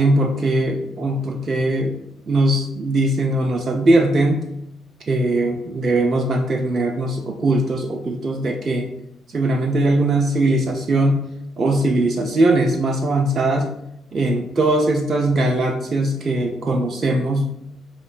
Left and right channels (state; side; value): normal; both; correlation 0.76